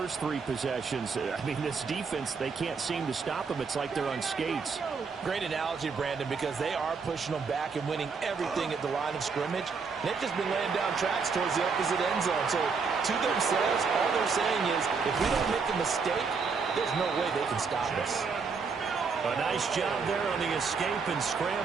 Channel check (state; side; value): quieter; left; 5.2 dB